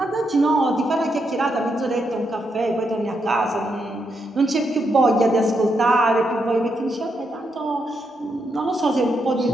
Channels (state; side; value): normal; both; correlation 0.81